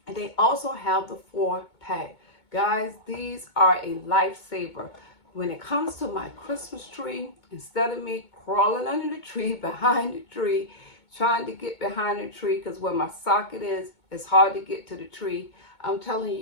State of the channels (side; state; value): right; late; 2.2 ms